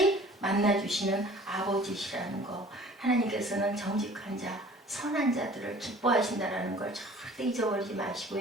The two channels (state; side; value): normal; both; correlation 0.49